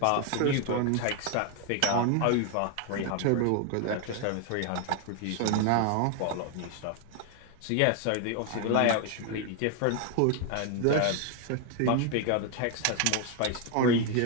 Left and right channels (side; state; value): both; different; correlation 0.01